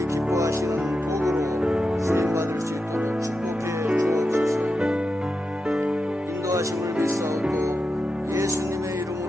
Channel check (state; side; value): normal; both; correlation 0.89